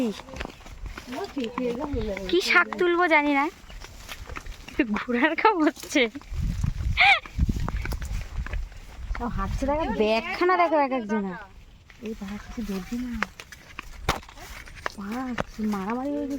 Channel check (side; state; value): both; identical; correlation 1.00